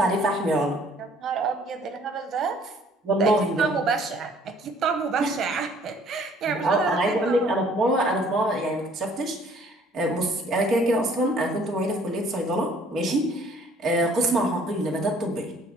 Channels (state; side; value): normal; both; correlation 0.58